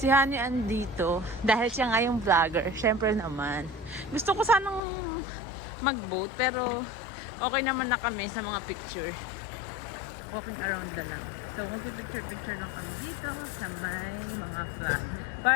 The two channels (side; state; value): right; drops out; at 4.8 s